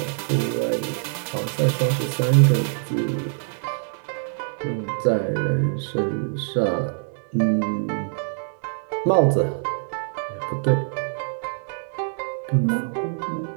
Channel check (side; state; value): left; silent; digital silence